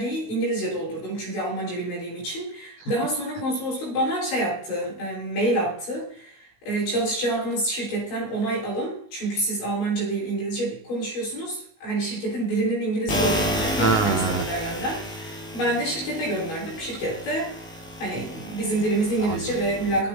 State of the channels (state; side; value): late; right; 19 ms